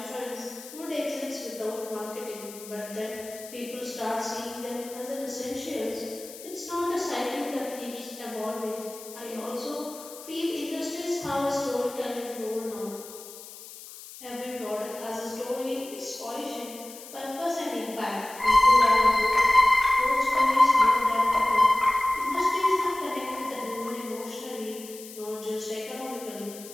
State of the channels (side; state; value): left; noise; hiss, 15 dB below the sound